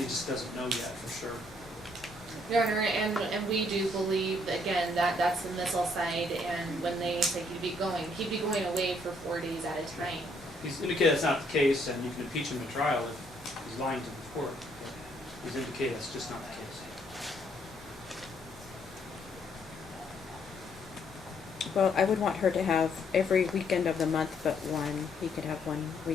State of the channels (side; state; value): both; normal; correlation 0.69